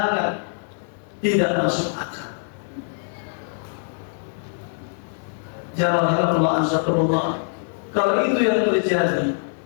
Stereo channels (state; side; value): silent; right; 63 dB below the other